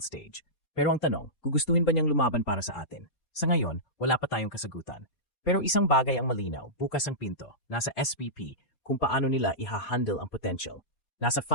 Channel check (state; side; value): late; right; 4.2 ms